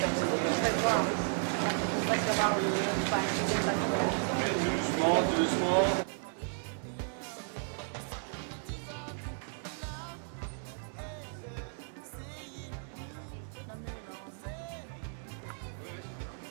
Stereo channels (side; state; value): left; silent; 55 dB below the other